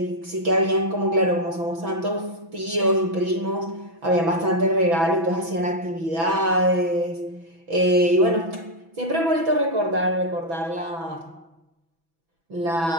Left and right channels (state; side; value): late; left; 6.1 ms